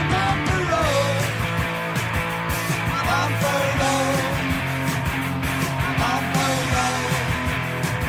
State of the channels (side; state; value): both; identical; correlation 1.00